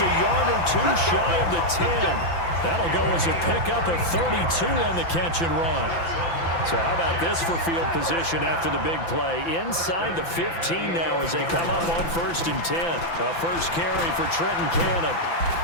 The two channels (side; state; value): right; late; 5.9 ms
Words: a yard or two shy of the 10. That'll go as a pickup of 32 on the catch and run. So how about this for field position after the big play? Inside the 15 now as they come up on 1st and 10. A first carry for Trenton Cannon.